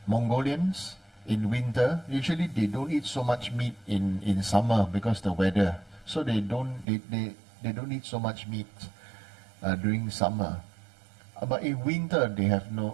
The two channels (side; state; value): left; drops out; at 6.9 s